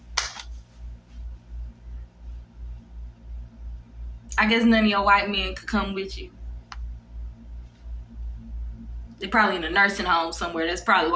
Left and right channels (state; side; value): identical; both; correlation 1.00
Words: I guess none of your white men could come with you. They're probably in a nursing home somewhere. That's probably